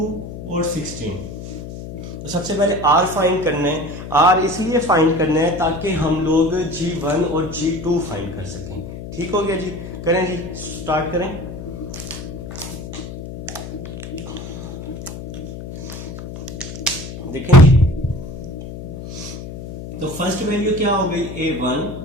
और 16। तो सबसे पहले R फाइंड करना है। R इसलिए फाइंड करना है ताकि हम लोग G1 और G2 फाइंड कर सकें। ठीक हो गया जी, करें जी, स्टार्ट करें। देखें जी, तो फर्स्ट वैल्यू क्या हो गई A1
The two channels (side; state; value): left; noise; hum, 10 dB below the sound